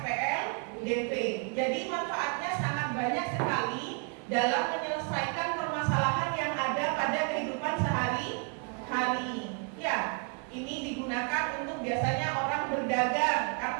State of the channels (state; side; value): quieter; left; 36.4 dB